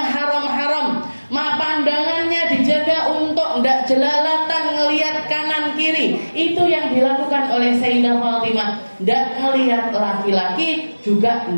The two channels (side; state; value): both; inverted; correlation -1.00